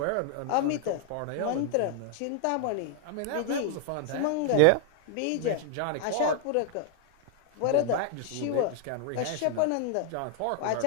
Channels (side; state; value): both; different; correlation 0.00